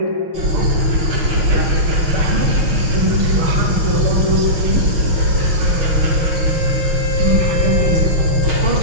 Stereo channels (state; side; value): late; left; 6.2 ms